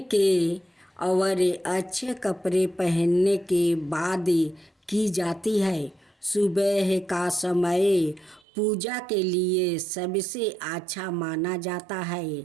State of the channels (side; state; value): left; drops out; at 8.4 s